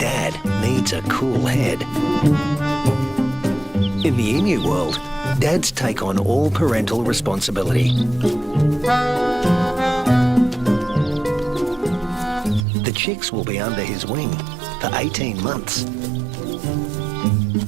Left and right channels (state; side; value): drops out; left; at 12.7 s